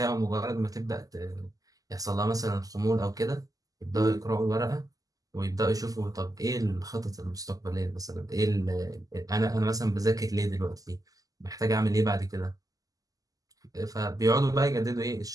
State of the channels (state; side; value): late; left; 0.17 ms